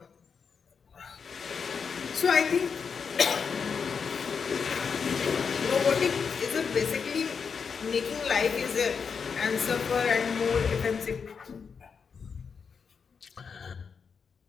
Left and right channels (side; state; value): right; quieter; 6.0 dB